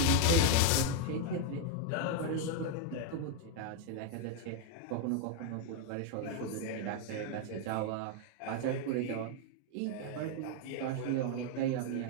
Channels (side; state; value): both; different; correlation 0.00